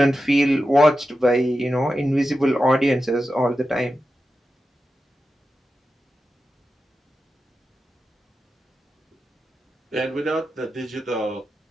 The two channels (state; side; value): normal; both; correlation 0.91